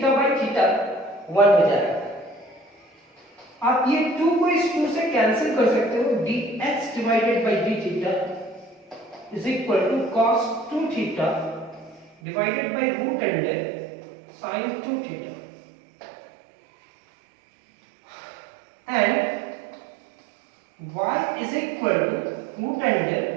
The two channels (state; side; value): drops out; left; at 12.2 s